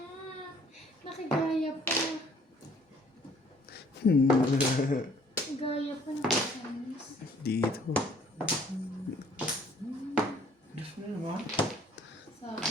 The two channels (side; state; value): both; normal; correlation 0.59